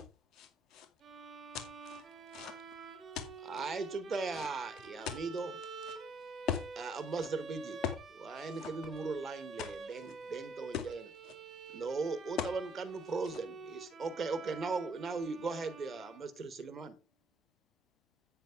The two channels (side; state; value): both; normal; correlation 0.66